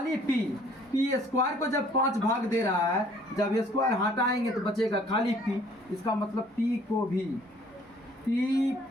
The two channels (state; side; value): normal; both; correlation 0.58